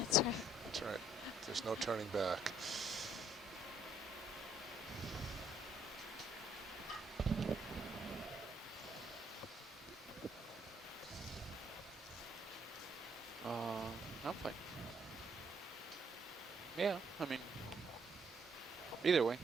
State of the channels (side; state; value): both; normal; correlation 0.67